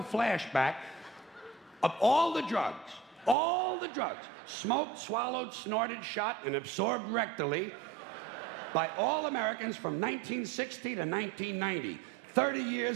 flashback of all the drugs, smoked, swallowed, snorted, shot, and absorbed rectally by all Americans from 1960 to 1990. 30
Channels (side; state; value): left; drops out; at 3.4 s